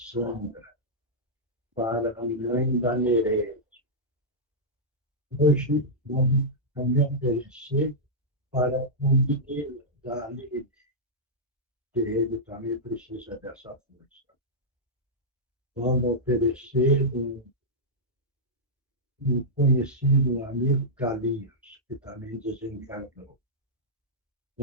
para a mãe da Nereide. Hoje vamos também oferecer para o menino da Aline, que ele também precisa dessa força. Vamos oferecer um conhecido amigo Carlinhos, que também desencarnou.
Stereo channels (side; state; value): both; normal; correlation -0.10